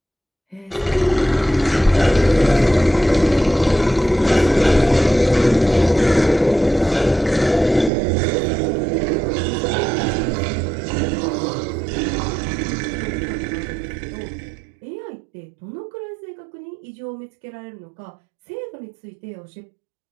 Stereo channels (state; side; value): drops out; left; at 7.9 s